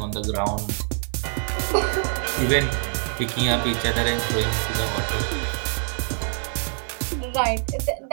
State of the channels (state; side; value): silent; left; 62 dB below the other